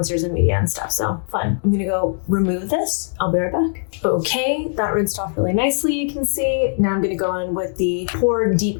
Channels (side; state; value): right; silent; 65 dB below the other